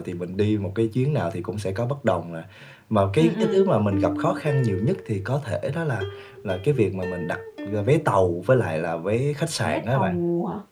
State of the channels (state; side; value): identical; both; correlation 1.00